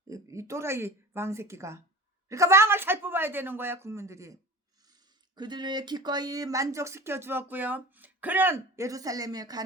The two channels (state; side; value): normal; both; correlation 0.38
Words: 이 또라이 왕 새끼가. 그러니까 왕을 잘 뽑아야 되는 거야. 국민들이 그들을 기꺼이 만족시켜 주었고요. 그는 예루살렘에